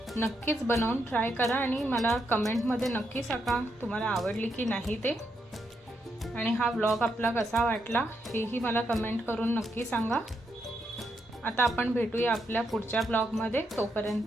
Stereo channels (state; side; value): normal; both; correlation 0.80